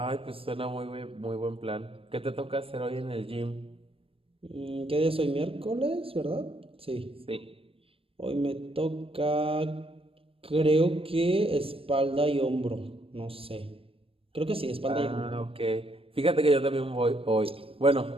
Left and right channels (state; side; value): late; left; 0.27 ms